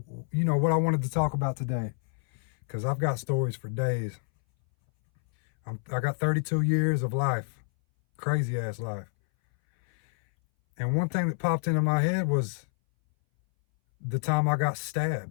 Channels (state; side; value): silent; right; 59 dB below the other